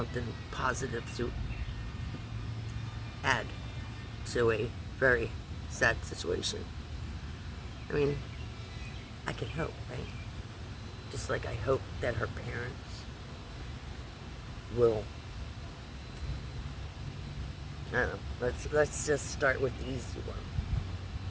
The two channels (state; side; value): identical; both; correlation 1.00